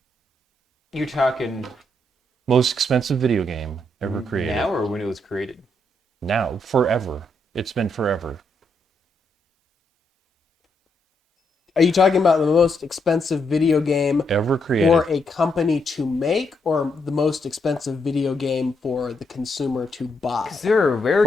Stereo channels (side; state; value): both; normal; correlation 0.78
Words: You're talking Most expensive video game ever created. now or when it was created? Now. Forever. It's been forever. Are you talking about the most expensive video game Ever created. for a company to make, or the most expensive video game for the consumer to buy? Because there are rare